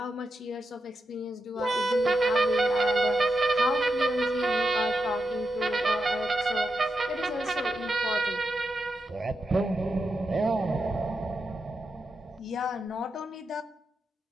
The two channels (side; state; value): both; normal; correlation 0.87